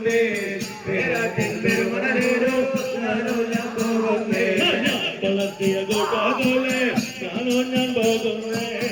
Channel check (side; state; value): both; identical; correlation 1.00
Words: പേരാട്ടിൻ പെരുമണലേലോ ഞാനോ ഞാൻ പോകുന്നേ വളർത്തിയ കൂട്ടാതോലെ ഞാനോ ഞാൻ പോകുന്നേ